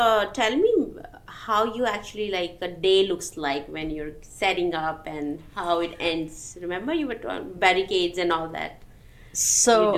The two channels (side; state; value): both; identical; correlation 1.00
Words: tell me how you actually like a day looks like when you're setting up and how it ends. Remember, you were barricades and all that.